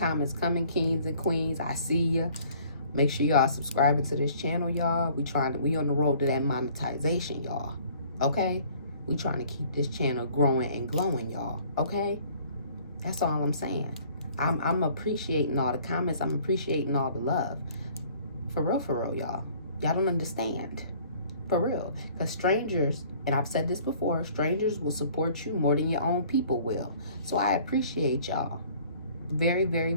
coming, kings and queens. I see ya. Make sure y'all subscribing to this channel, y'all. We on the road to that monetization, y'all. Okay? We trying to keep this channel growing and glowing, y'all. Okay? That's all I'm saying. I'm appreciating all the comments. I'm appreciating all the love. For real, y'all. Y'all don't understand. For real. Because strangers, and I've said this before, strangers will support you more than your own people will. So I appreciate y'all. Very,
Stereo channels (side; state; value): both; inverted; correlation -0.55